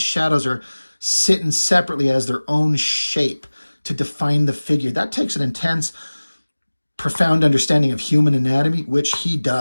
shadows are sitting separately as their own shape to define the figure. That takes an intense, profound understanding of human anatomy, which he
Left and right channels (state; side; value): inverted; both; correlation -1.00